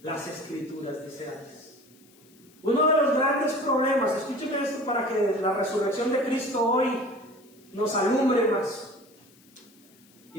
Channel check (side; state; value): left; noise; hiss, 28 dB below the sound